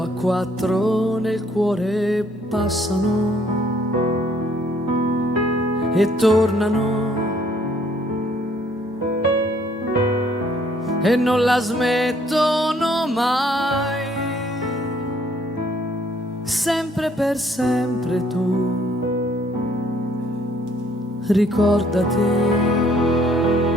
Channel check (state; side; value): normal; both; correlation 0.64